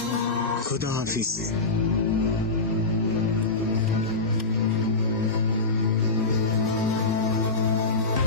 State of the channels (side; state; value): right; quieter; 3.6 dB